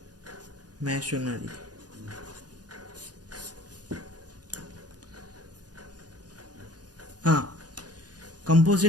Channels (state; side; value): late; left; 0.69 ms